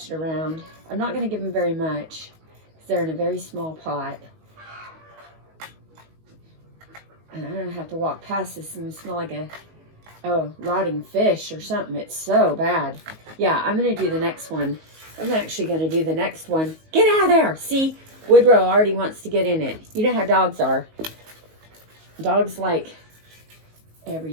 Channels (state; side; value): late; left; 19 ms